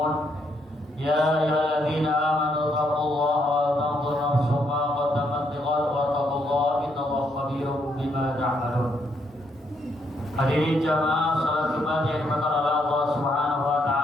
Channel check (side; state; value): both; normal; correlation 0.74